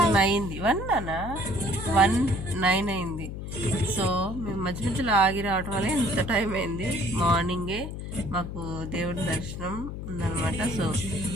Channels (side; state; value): left; noise; hum, 7 dB below the sound